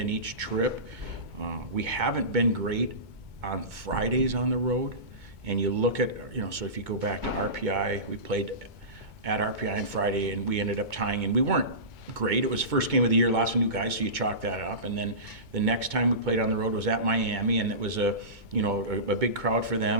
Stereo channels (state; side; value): late; left; 2.2 ms